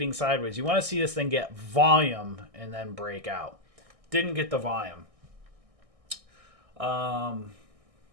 sideways. You want to see this thing get volume and then break out. Didn't get the volume.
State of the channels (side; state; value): left; late; 1.6 ms